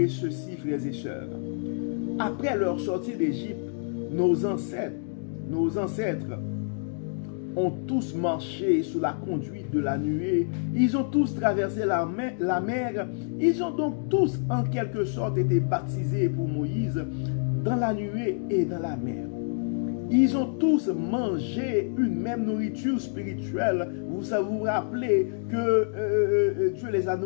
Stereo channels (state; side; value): silent; right; digital silence